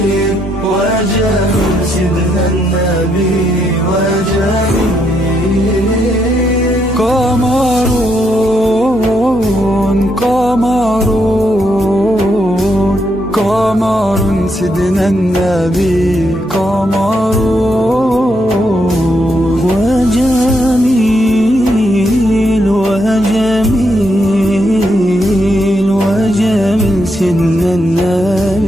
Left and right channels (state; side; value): normal; both; correlation 0.78